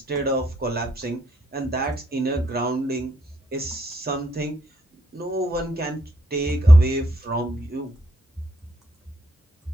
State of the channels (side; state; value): both; normal; correlation 0.74